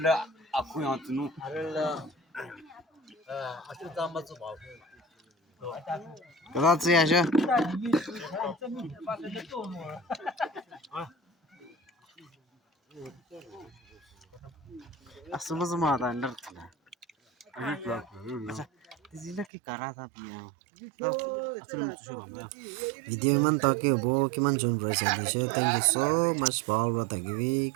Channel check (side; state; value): left; drops out; at 19.5 s